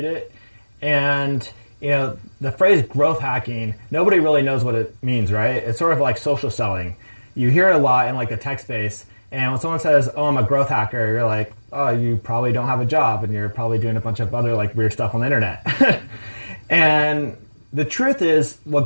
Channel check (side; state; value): both; inverted; correlation -1.00